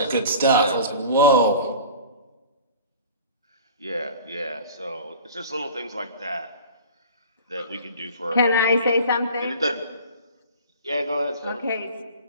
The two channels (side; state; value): both; inverted; correlation -0.41